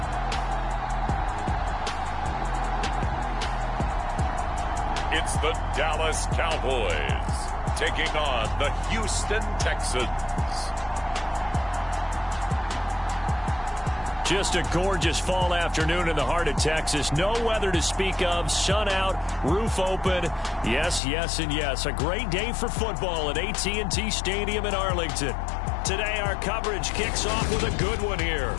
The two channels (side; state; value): right; drops out; at 21.0 s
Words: It's the Dallas Cowboys taking on the Houston Texans. Just a gorgeous fall afternoon in the heart of Texas. No weather to speak of. Sun out, roof open. Yes, yes, and yes. A great day for football at AT&T Stadium in Arlington. Today, our coverage kicks off with a good one here